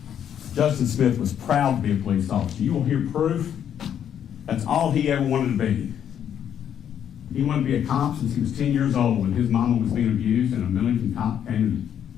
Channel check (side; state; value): right; quieter; 9.3 dB